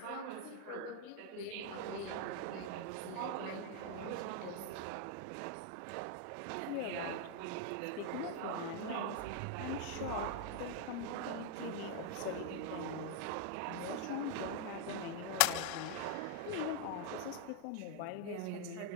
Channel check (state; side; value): different; both; correlation 0.00